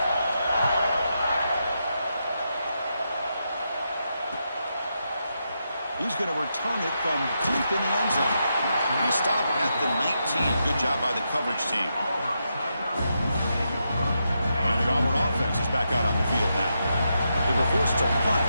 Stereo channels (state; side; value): inverted; both; correlation -0.84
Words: He's going to return it from deep in the end zone. He stopped at the 19. Good job by the coverage team. And the Auburn offense is back out on the field now. They were forced to punt